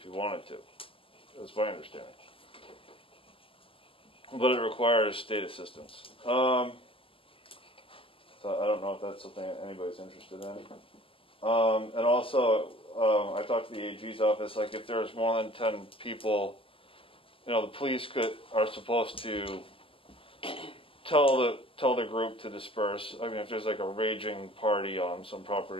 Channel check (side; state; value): right; late; 0.26 ms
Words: you wanted to. That's my understanding. But it requires state assistance. So I don't know if that's something anybody's interested in. And also, I talked to the AG's office, like if there's more than 10 people, the police are supposed to tell the group to disperse. I mean, if there's like a raging party on some